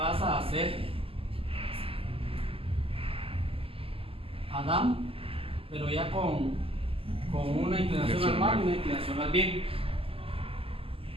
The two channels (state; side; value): late; left; 0.27 ms